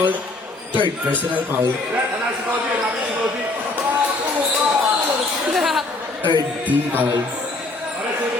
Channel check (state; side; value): quieter; right; 3.1 dB